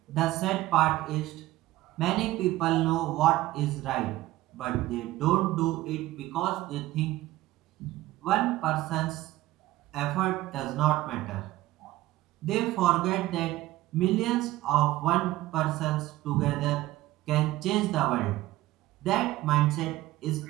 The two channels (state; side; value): quieter; left; 16.6 dB